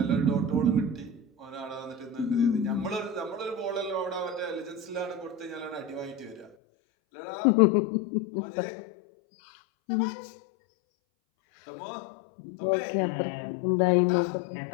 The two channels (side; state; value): right; drops out; at 6.5 s